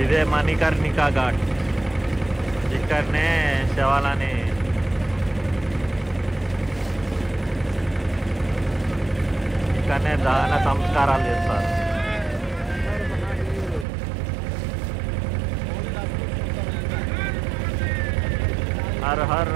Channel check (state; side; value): drops out; left; at 13.9 s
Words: ఇదే మణికర్ణికా ఘాట్. ఇక్కడనే శవాలని ఇక్కడనే దహన సంస్కారాలు చేస్తారు. Her her